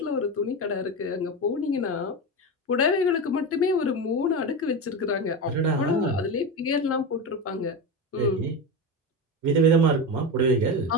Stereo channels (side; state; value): both; normal; correlation 0.19